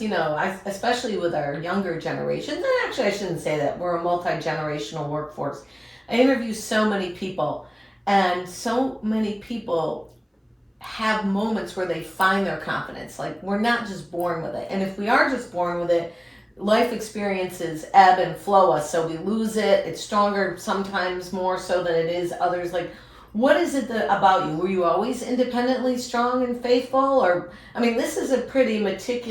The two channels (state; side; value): identical; both; correlation 1.00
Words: especially with our younger generations, and actually I shouldn't say that, we're a multi-generational workforce. I interview so many people, and so many people have moments where they find their confidence. Like, we're not just born with it. And if we are just born with it, life experiences ebb and flow us. So we lose it. It's stronger sometimes more so than it is others. Like, what is it about you? Were you always independently strong and faithful? Or, this is a pretty